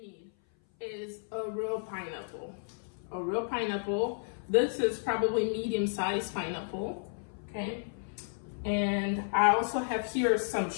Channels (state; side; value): silent; right; 56 dB below the other